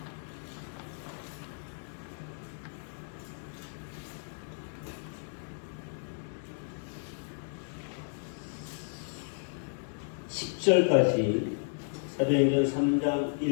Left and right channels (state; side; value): silent; right; digital silence